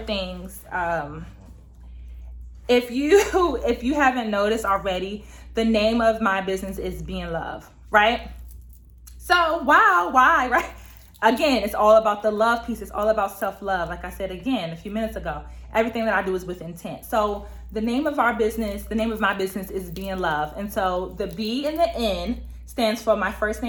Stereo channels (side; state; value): both; identical; correlation 1.00